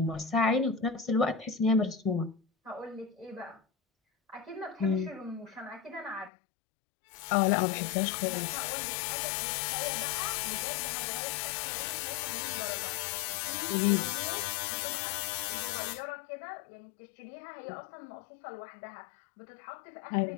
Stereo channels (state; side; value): drops out; right; at 6.3 s